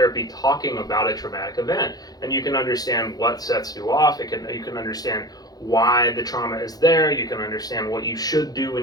talking about a traumatic event, and you can understand what sets you off. You can understand why the trauma is there. You can understand what you should do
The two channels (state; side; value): late; right; 0.19 ms